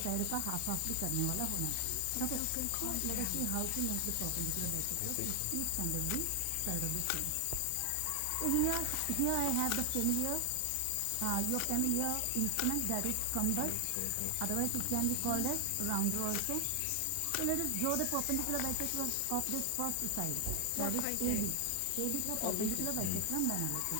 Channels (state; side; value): different; both; correlation 0.00